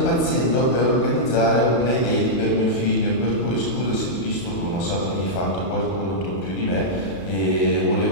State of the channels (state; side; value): late; right; 32 ms